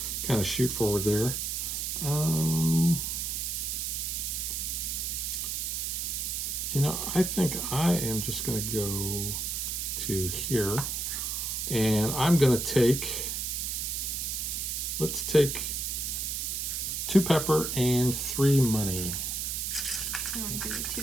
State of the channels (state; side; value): noise; right; hiss, 2 dB below the sound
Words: kind of shoot forward there. You know, I think I am just going to go to here, and I'm going to take, let's take 2 pepper and 3 money. You want to give me 2